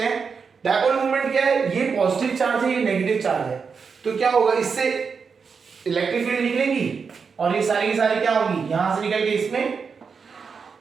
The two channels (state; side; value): quieter; left; 5.6 dB